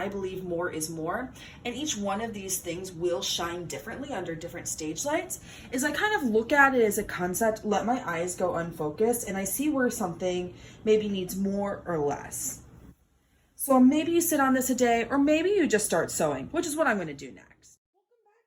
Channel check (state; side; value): identical; both; correlation 1.00